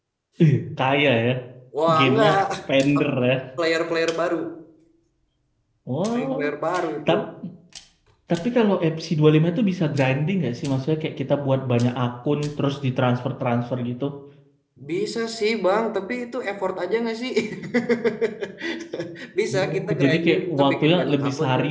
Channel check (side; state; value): both; identical; correlation 1.00